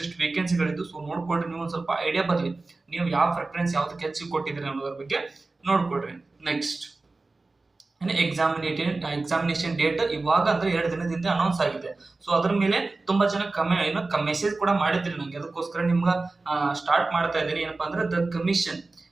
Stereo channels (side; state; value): left; quieter; 3.4 dB